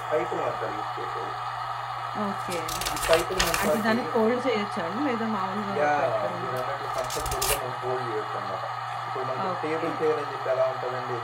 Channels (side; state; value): both; identical; correlation 1.00